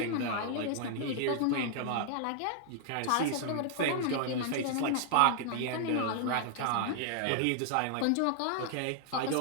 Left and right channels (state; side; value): different; both; correlation 0.00